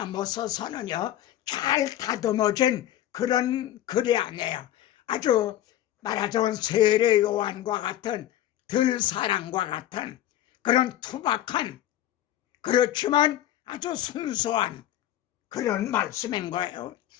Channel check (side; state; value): right; quieter; 12.8 dB